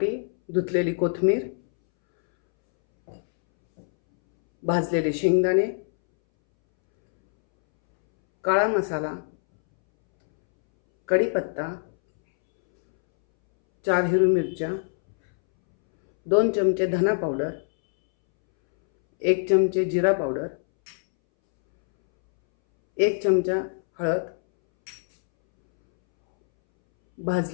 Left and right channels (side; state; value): right; silent; 63 dB below the other